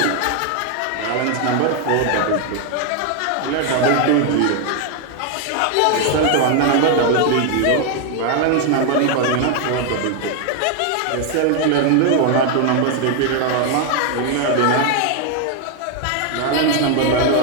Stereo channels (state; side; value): different; both; correlation 0.01